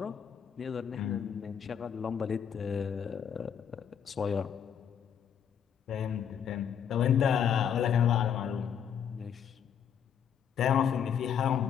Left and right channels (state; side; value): quieter; right; 8.3 dB